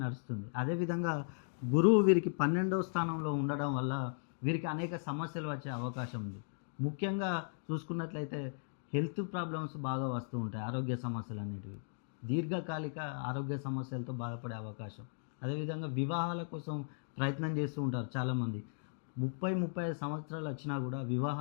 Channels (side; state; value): right; silent; digital silence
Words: నడుస్తుంది. అదేవిధంగా గురువు వీరికి 12వ స్థానంలో ఉండడం వల్ల వీరికి అనేక సమస్యలు వచ్చే అవకాశం ఉంది. ముఖ్యంగా చూసుకున్నట్లయితే హెల్త్ ప్రాబ్లమ్స్ బాగా వస్తూ ఉంటాయి. ఆరోగ్య సమస్యలు అనేటివి దీర్ఘకాలిక ఆరోగ్య సమస్యలతో బాధపడే అవకాశం. అదేవిధంగా వివాహాల కోసం ప్రయత్నం చేస్తూ ఉంటారు చాలామంది. 35 సంవత్సరాలు వచ్చినా కూడా